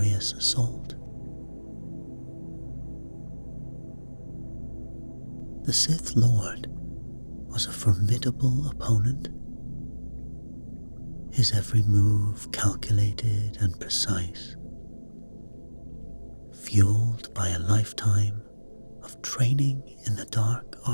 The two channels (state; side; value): inverted; both; correlation -1.00